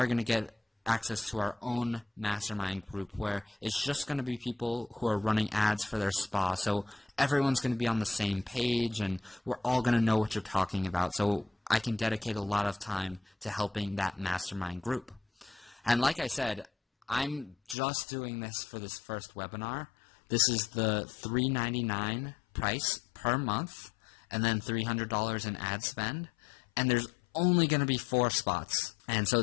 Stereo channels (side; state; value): right; drops out; at 17.8 s